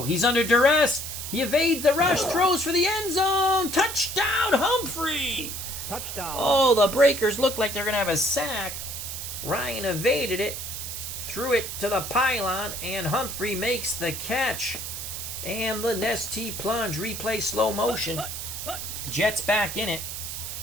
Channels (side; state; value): right; noise; hiss, 6 dB below the sound